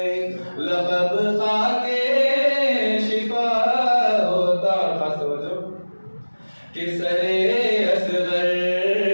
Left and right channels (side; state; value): both; inverted; correlation -1.00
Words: लक़ब खाके शिफा होता। खास तवज्जो कि सरे असगर